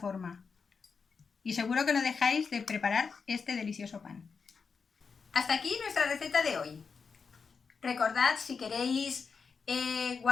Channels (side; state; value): right; quieter; 5.4 dB